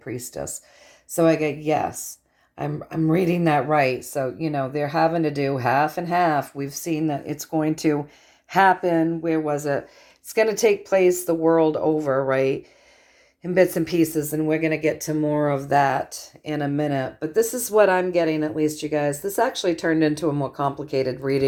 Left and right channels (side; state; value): both; identical; correlation 1.00